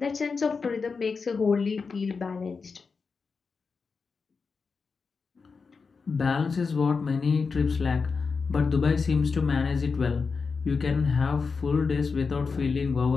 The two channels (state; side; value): quieter; right; 4.9 dB